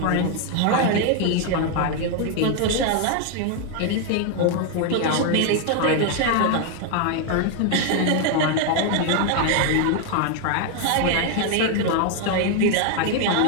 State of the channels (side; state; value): both; different; correlation 0.01